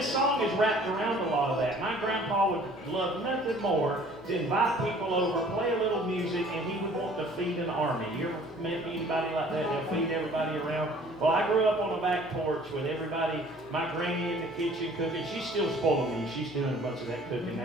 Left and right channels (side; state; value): both; normal; correlation 0.53